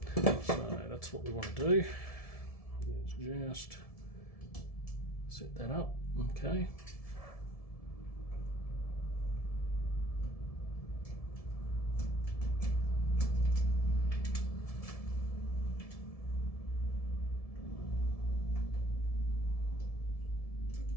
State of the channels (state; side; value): late; right; 1.7 ms